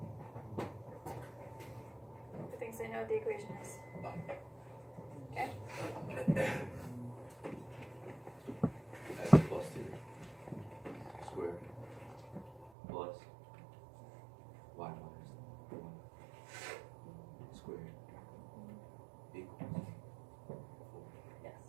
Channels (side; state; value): left; drops out; at 12.7 s